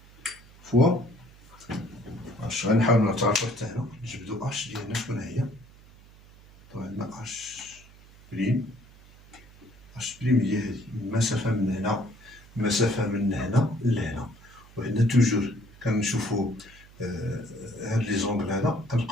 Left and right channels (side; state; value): right; noise; hum, 23 dB below the sound